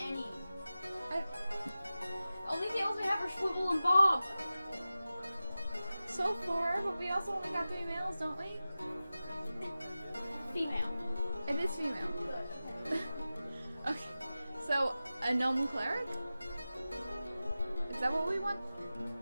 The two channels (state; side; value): inverted; both; correlation -0.95